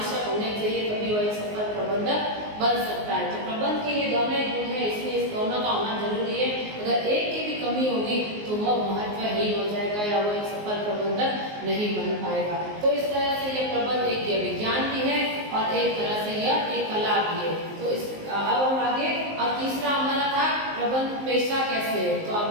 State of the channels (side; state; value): left; late; 19 ms